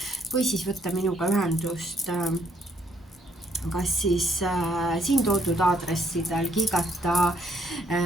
või siis võtta minuga ühendust kas siis siin toodud aadressidel kiigata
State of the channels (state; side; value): normal; both; correlation 0.69